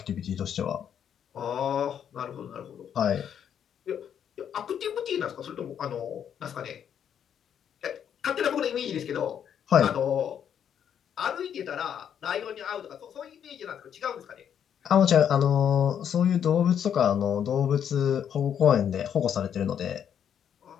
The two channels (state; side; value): quieter; right; 8.8 dB